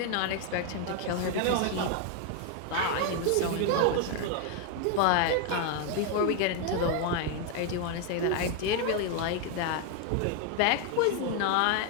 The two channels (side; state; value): both; different; correlation 0.01